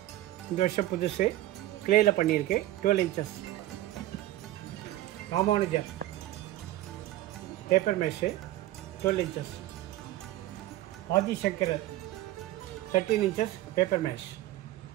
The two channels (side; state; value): left; quieter; 15.4 dB